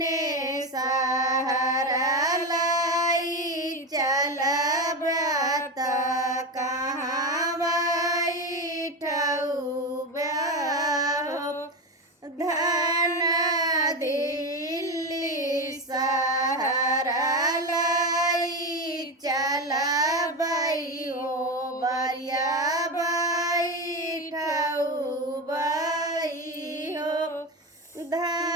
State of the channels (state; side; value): normal; both; correlation 0.18